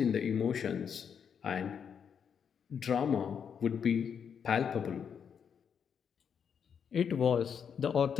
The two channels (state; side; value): quieter; right; 7.3 dB